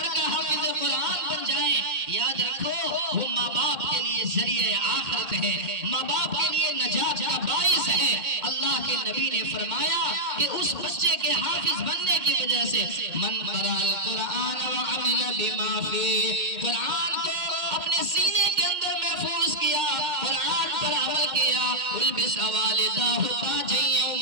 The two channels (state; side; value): late; left; 2.1 ms